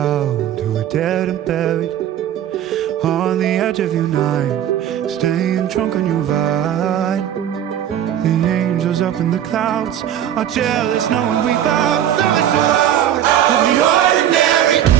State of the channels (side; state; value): left; quieter; 10.6 dB